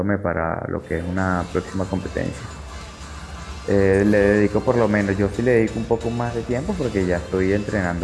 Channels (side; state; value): both; identical; correlation 1.00